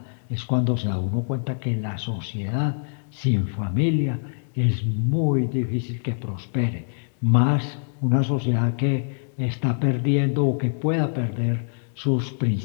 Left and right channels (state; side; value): silent; right; digital silence